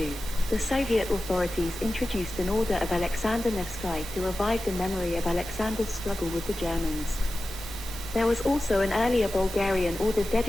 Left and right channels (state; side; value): normal; both; correlation 0.95